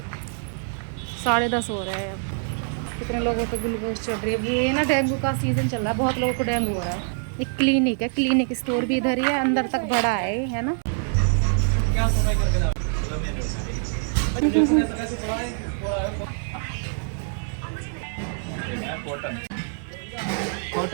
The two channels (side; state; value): left; silent; digital silence